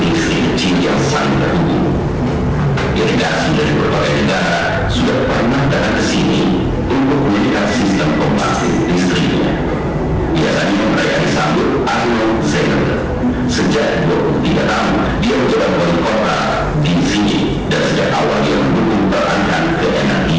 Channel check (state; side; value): identical; both; correlation 1.00